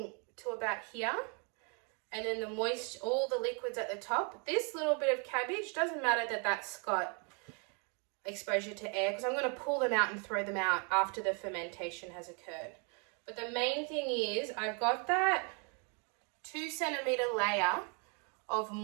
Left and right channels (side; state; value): left; quieter; 36.9 dB